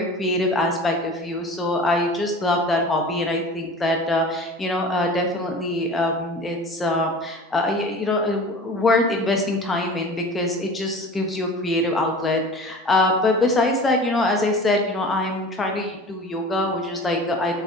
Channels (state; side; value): normal; both; correlation 0.38